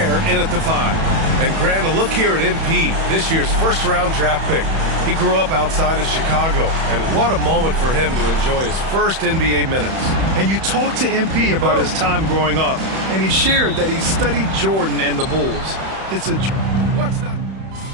in at the 5. And Grant, a look here at MP, this year's first-round draft pick. He grew up outside of Chicago, and what a moment for him to enjoy his first NBA minutes. And you talked to MP about his time growing up, and he shared that he studied Jordan and the Bulls. It's a... What's not...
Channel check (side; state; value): left; late; 31 ms